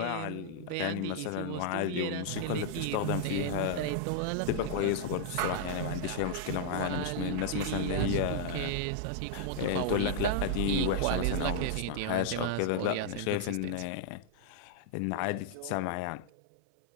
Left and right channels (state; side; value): different; both; correlation -0.01